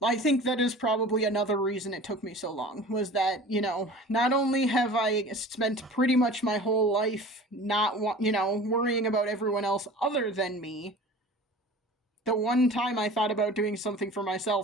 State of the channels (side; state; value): both; normal; correlation 0.40